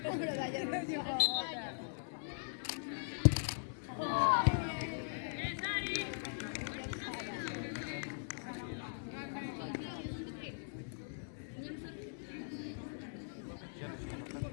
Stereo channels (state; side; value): silent; right; digital silence